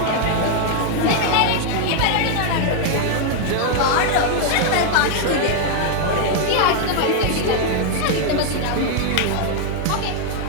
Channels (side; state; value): both; different; correlation 0.00